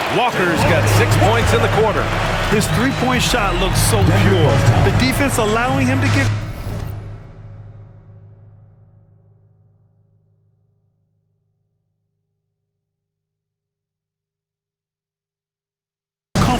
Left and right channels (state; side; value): identical; both; correlation 1.00